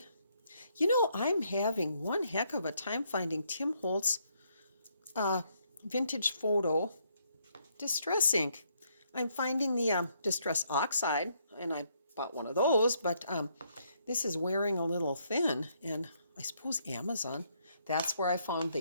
you know, I'm having one heck of a time finding Tim Holtz vintage photo distress ink. I'm finding the distress oxide, and I bought one of those, but this is wearing a little thin, and I suppose Amazon, that's where I found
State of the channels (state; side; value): inverted; both; correlation -0.72